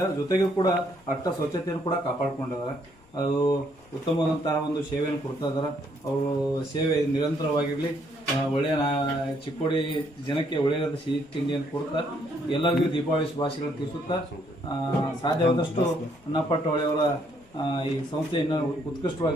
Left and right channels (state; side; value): noise; left; rumble, 29 dB below the sound